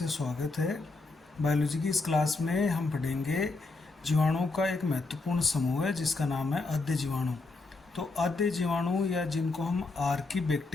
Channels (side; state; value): right; quieter; 3.6 dB